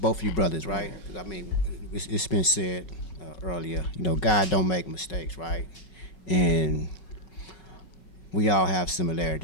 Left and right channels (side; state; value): right; late; 5.4 ms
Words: of you brothers, right? Because I mean, it's been said earlier. You know, God don't make mistakes, right? And we all have